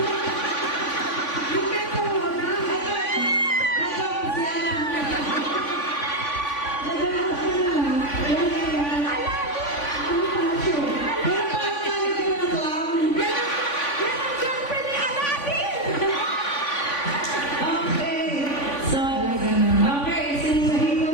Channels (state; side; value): late; right; 3.5 ms